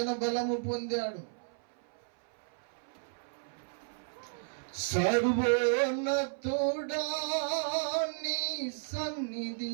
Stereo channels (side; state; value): left; silent; 56 dB below the other